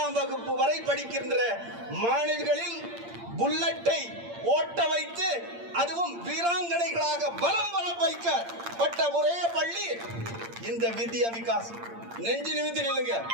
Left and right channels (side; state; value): left; late; 8.7 ms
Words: வகுப்பு வரை படிக்கின்ற மாணவிகளில் புல்லட்டை ஓட்ட வைத்து அதுவும் வீராங்கனைகளாக பலம் வர வைக்கப்பட்ட ஒரே பள்ளி இந்த வித்யா விகாஸ். நெஞ்சு நிமித்தி நில்லுங்க.